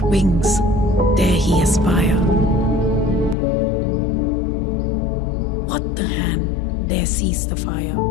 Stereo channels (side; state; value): right; drops out; at 3.4 s